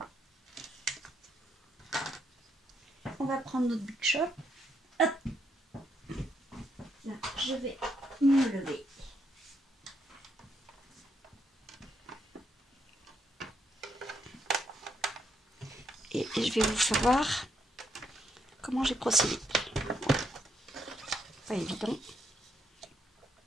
On va prendre notre Big Shop. Hop. Là, je vais me lever. Et je vais vous faire voir comment j'ai procédé. Pas évident.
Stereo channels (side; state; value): both; normal; correlation 0.76